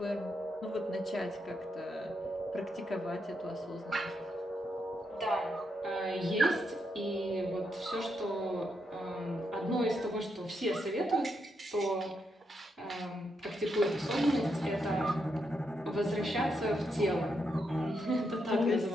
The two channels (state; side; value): normal; both; correlation 0.81